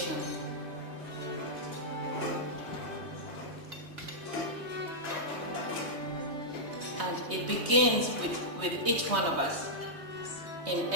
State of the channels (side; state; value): left; late; 3.2 ms